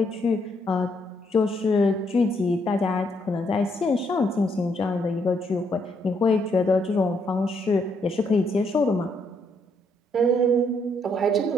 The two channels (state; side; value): normal; both; correlation 0.73